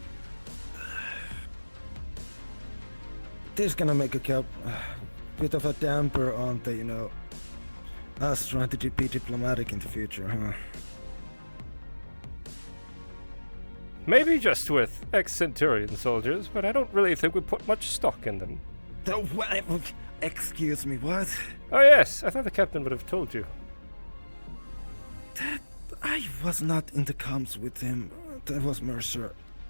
This is gonna make a bit of a damper on the, you know, us trying to be diplomatic in the future, huh? Maybe just with ex-Centurion soldiers, but I don't really think we put much stock in them. Excuse me, what? Oh yes, I thought the captain would have told you. I was not in the comms with him. That was Mercer.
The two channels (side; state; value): both; inverted; correlation -1.00